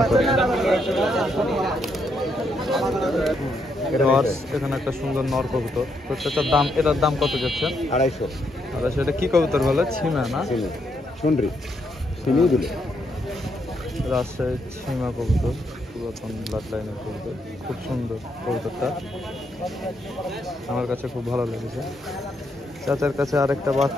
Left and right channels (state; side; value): normal; both; correlation 0.77